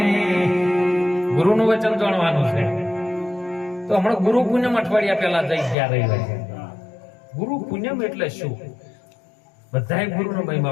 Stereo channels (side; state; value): right; drops out; at 5.8 s